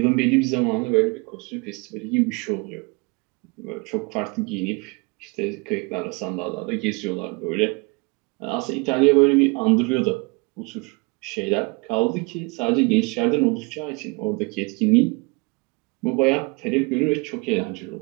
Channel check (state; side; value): quieter; left; 28.8 dB